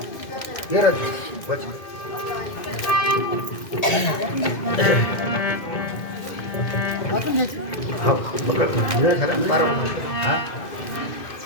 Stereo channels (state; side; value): late; right; 2.1 ms